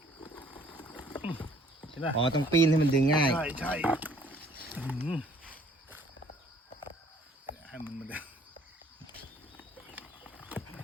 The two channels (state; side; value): normal; both; correlation 0.59